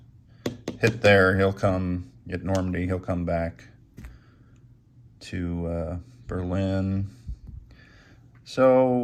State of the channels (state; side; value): identical; both; correlation 1.00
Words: hit there. He'll come at Normandy. He'll come back to Berlin. So